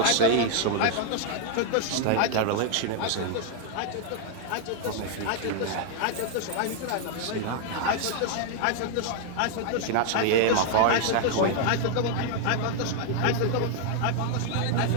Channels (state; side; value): different; both; correlation 0.00